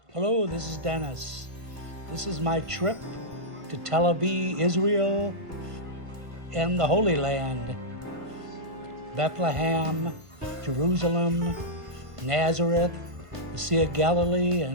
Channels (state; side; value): late; left; 1.5 ms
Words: Hello, this is Dennis. This is my trip to Tel Aviv, Israel, and the Holy Land, Bethlehem, Jerusalem, Nazareth, the Sea of Galilee,